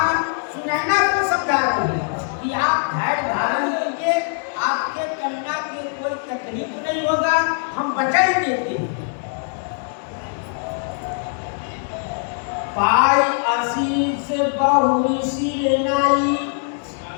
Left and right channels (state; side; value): silent; right; 58 dB below the other